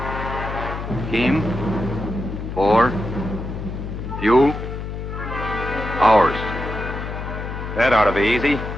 Team. 4. Fuel. Hours. That ought to be easy.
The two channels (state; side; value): noise; left; hum, 6 dB below the sound